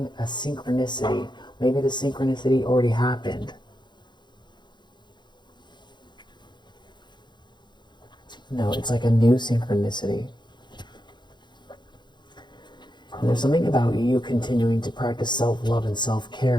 a synchronicity. Maybe the synchronicity already happened. No, it's like a new synchronicity. And there's something about you continuing to practice self-love and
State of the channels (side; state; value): right; late; 0.22 ms